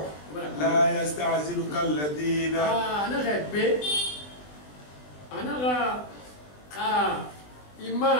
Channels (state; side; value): late; right; 20 ms